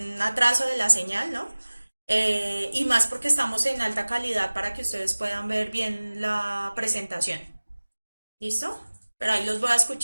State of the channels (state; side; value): inverted; both; correlation -1.00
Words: atraso de la señal, ¿no? Y más porque estamos en alta calidad para que ustedes puedan ver bien la presentación. ¿Listo? Pero ahí los voy a